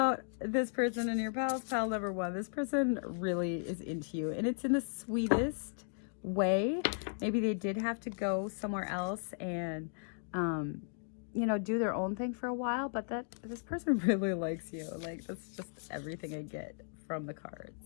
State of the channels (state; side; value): silent; right; digital silence